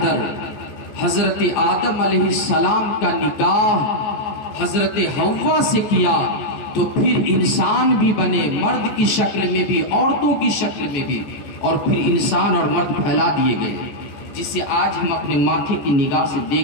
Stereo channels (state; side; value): late; right; 14 ms